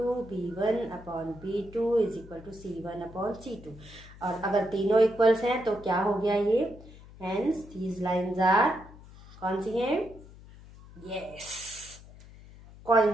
B1/B2 is equal to C1/C2। और अगर तीनों इक्वल्स हैं तो क्या हो गया ये, हेंस दीज लाइंस आर कौन सी हैं, यस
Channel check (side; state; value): left; noise; hum, 19 dB below the sound